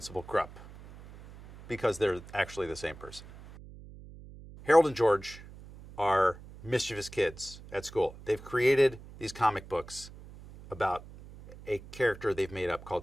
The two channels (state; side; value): noise; right; hum, 17 dB below the sound